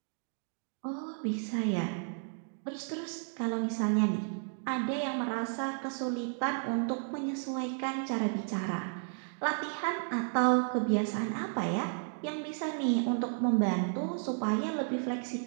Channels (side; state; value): left; silent; 56 dB below the other